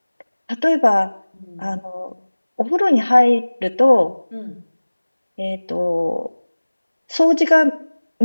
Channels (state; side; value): inverted; both; correlation -1.00